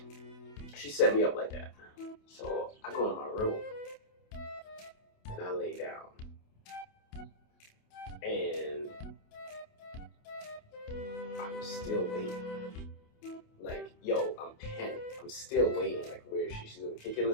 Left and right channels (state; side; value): late; right; 28 ms